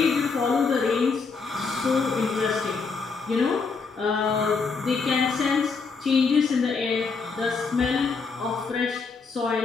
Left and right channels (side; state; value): right; quieter; 4.8 dB